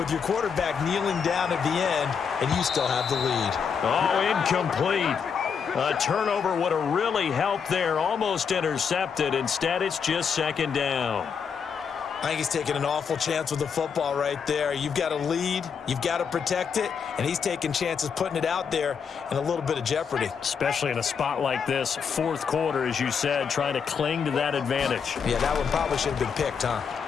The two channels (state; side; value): quieter; right; 6.6 dB